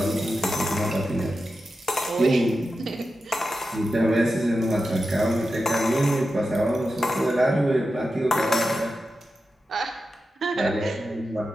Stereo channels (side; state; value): both; normal; correlation 0.91